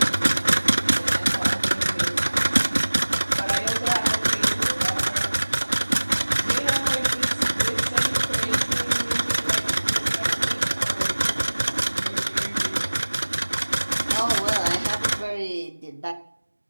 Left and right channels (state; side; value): inverted; both; correlation -1.00